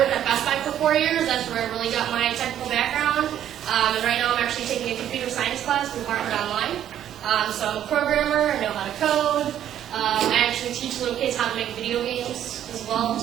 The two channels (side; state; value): left; quieter; 10.8 dB